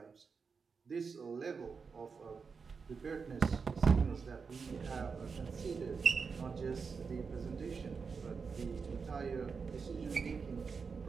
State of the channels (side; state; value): left; quieter; 5.3 dB